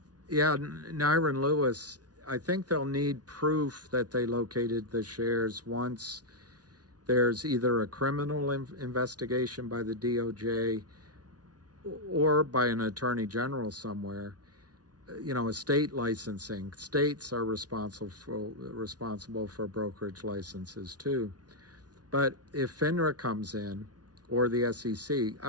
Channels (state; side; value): late; left; 0.69 ms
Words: Yeah, Nyron Lewis. I think they'll need proof that they located the shares once there's either a criminal investigation by the DOJ or by an attorney general somewhere. Estate licensing. States are responsible for brokerage licenses too. But if FINRA comes in, or the SEC.